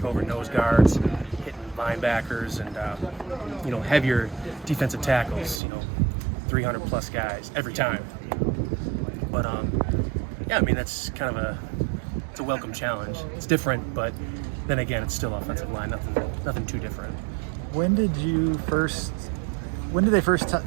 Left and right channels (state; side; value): drops out; left; at 5.6 s